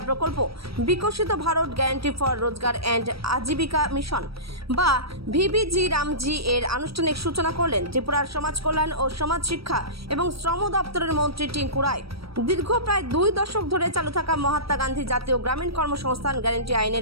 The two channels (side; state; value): left; late; 0.76 ms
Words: প্রকল্প বিকশিত ভারত গ্যারান্টি ফর রোজগার অ্যান্ড আজীবিকা মিশন বা ভিবিজি রামজি এর আনুষ্ঠানিক সূচনা করলেন ত্রিপুরার সমাজ কল্যাণ ও সমাজ শিক্ষা এবং শ্রম দপ্তরের মন্ত্রী টিঙ্কু রায়। দীর্ঘ প্রায় 2 দশক ধরে চালু থাকা মহাত্মা গান্ধী জাতীয় গ্রামীণ কর্মসংস্থান গ্যারান্টি